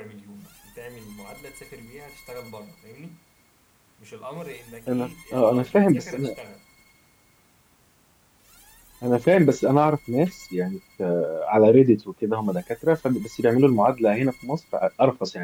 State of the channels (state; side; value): identical; both; correlation 1.00